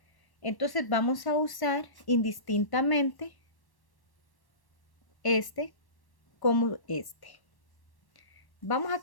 Entonces vamos a usar indistintamente este como este. Vamos a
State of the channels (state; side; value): late; right; 1.1 ms